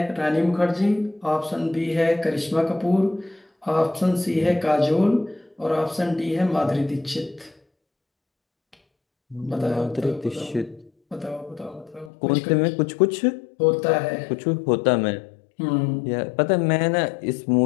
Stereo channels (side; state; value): right; drops out; at 12.1 s